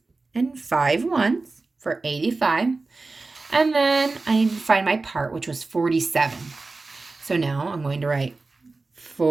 and 5 ones for 85. And then I need to find my part, which was 47. So now I'm going to write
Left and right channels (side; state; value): left; quieter; 3.6 dB